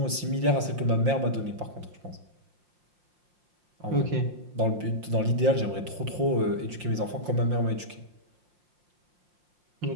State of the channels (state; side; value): late; left; 5.7 ms